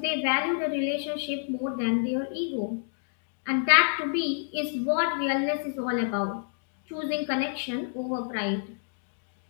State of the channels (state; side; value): silent; right; digital silence